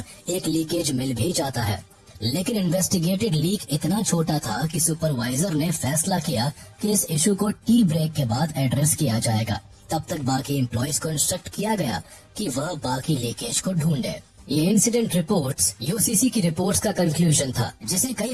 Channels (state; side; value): identical; both; correlation 1.00